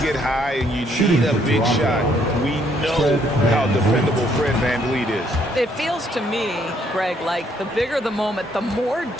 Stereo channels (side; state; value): both; normal; correlation 0.68